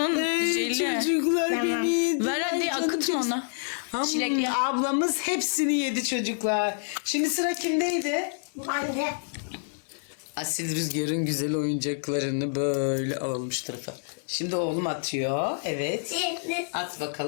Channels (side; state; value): right; silent; 60 dB below the other